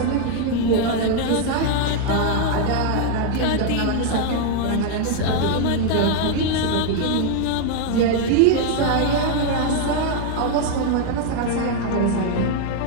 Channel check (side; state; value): both; different; correlation 0.00